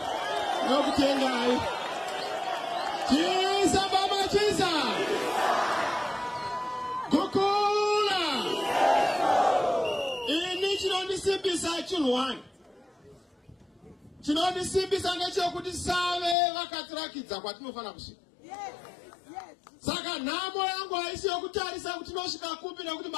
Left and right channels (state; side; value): drops out; right; at 16.4 s